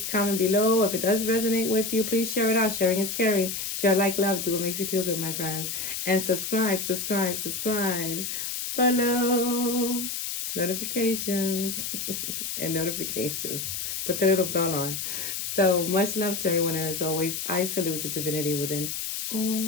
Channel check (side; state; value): left; noise; hiss, 4 dB below the sound